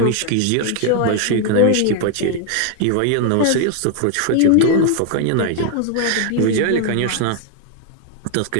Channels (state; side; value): different; both; correlation 0.00